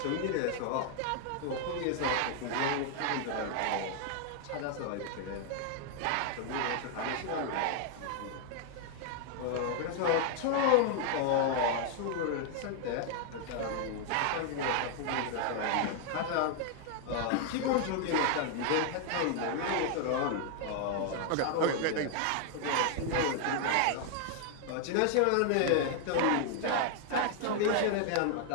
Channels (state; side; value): different; both; correlation 0.00